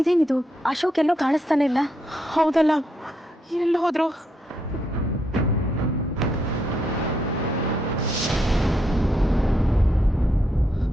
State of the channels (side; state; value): both; normal; correlation 0.78